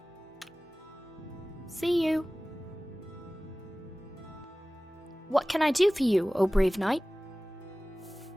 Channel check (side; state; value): both; normal; correlation 0.98